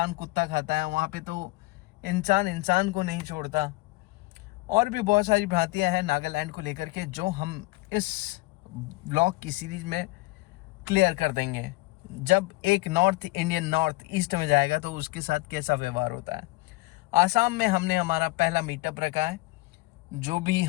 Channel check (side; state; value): right; quieter; 21.5 dB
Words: कुत्ता खाता है, वहाँ पे तो इंसान इंसान को नहीं छोड़ता। और भी बहुत सारी भ्रांतियां हैं नागालैंड को लेकर के, जो हम इस ब्लॉग की सीरीज में क्लियर कर देंगे। जब एक नॉर्थ इंडियन नॉर्थ ईस्ट में जाएगा तो उसके साथ कैसा व्यवहार होता है। आसाम में हमने हमारा पहला मीटअप रखा है। जो भी